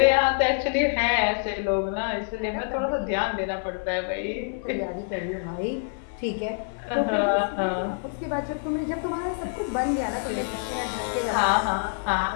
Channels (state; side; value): silent; right; 56 dB below the other